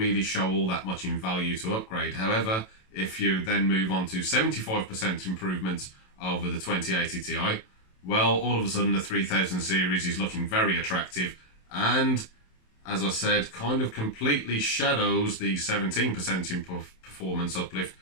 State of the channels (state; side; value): late; right; 27 ms